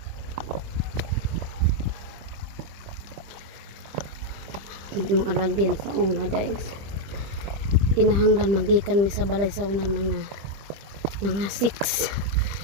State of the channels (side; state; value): left; late; 25 ms